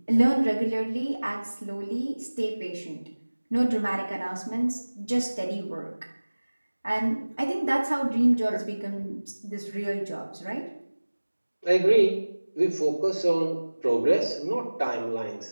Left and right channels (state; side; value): inverted; both; correlation -1.00